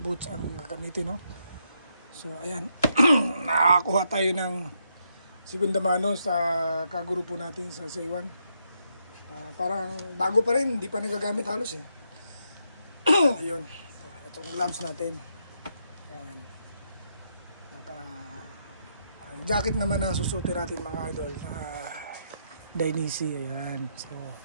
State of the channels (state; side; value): inverted; both; correlation -0.78